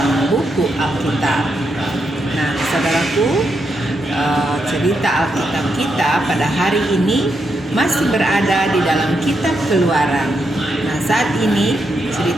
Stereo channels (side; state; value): both; normal; correlation 0.82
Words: buku Alkitab. Nah, saudaraku, cerita Alkitab kita pada hari ini masih berada di dalam kitab Keluaran. Nah, saat ini